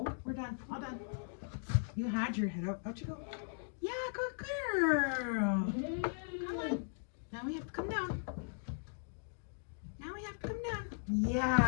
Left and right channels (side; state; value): right; silent; digital silence